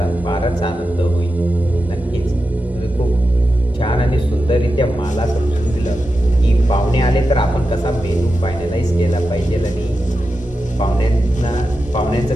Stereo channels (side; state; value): both; normal; correlation 0.90